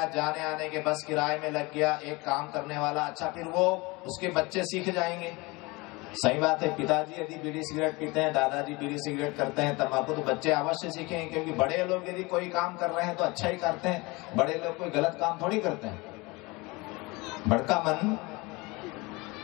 जाने आने के बस किराए में लग गया, एक काम करने वाला, अच्छा फिर वो उसके बच्चे सीख जाएंगे। सही बात है, पिताजी यदि बीड़ी सिगरेट पीते हैं, दादाजी बीड़ी सिगरेट करते हैं, तंबाकू, तो बच्चे अवश्य सीखेंगे, क्योंकि बड़े लोग यदि कोई काम कर रहे हैं तो अच्छा ही करते हैं, बड़े लोग कोई गलत काम थोड़ी करते हैं। बड़का मन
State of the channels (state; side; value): quieter; right; 24.5 dB